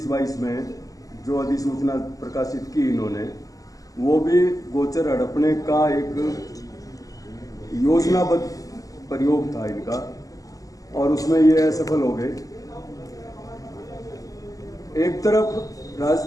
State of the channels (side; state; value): right; late; 0.17 ms